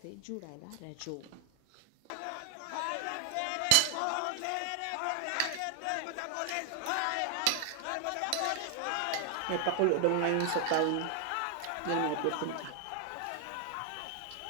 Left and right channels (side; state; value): both; different; correlation 0.00